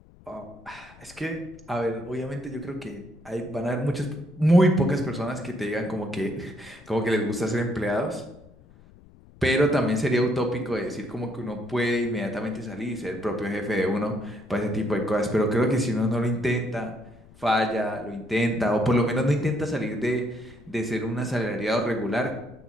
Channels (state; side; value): noise; left; rumble, 24 dB below the sound